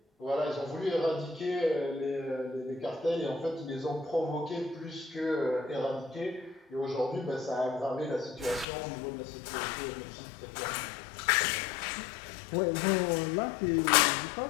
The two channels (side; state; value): right; drops out; at 8.7 s